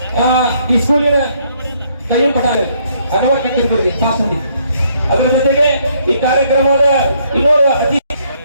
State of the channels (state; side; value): inverted; both; correlation -0.68